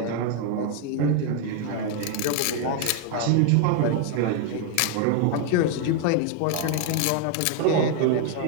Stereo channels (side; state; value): both; different; correlation 0.01